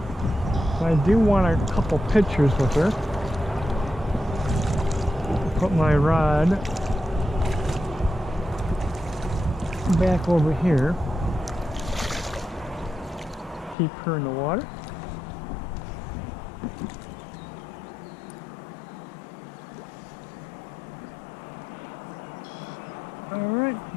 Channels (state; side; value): drops out; right; at 13.8 s